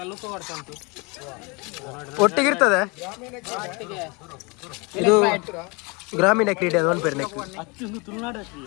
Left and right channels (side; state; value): right; quieter; 28.7 dB